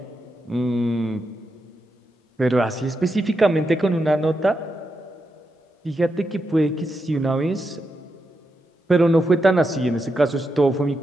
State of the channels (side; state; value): both; normal; correlation 0.85